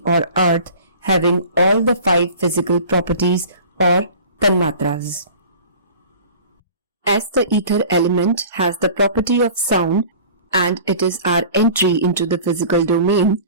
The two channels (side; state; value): both; inverted; correlation -0.43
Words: or earth having all the 5 physical properties or tanamatras. As the ether element has the property of sound and it is our entry into the physical domain,